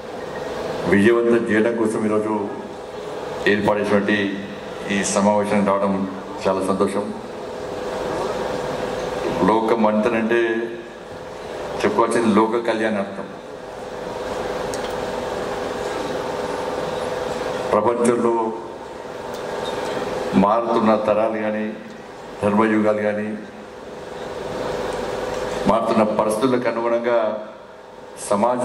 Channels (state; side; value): identical; both; correlation 1.00